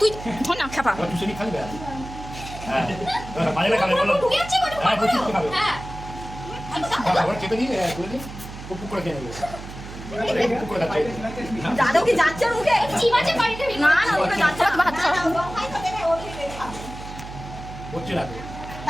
তুই ধর না খাপা আর তুই খালি বে হ্যাঁ মাঝে খাবে বলো হ্যাঁ বুঝছিস তো খাবে আবার খেতে দিয়ে করে দিই পুক করে খেয়ে নেবে পুক করে খাচ্ছে যাদব কি যাচ্ছে ওর মুখে না না ওকে যাচ্ছে না হাত ছাড়া হচ্ছে না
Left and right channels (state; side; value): noise; right; hum, 12 dB below the sound